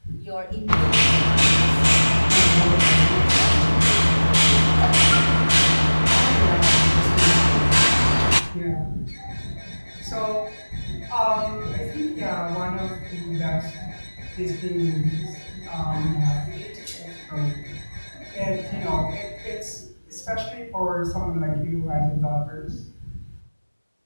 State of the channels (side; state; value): both; inverted; correlation -1.00